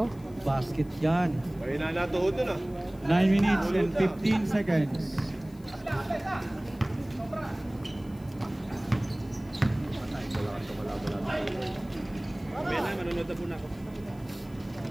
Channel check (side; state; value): left; noise; hiss, 27 dB below the sound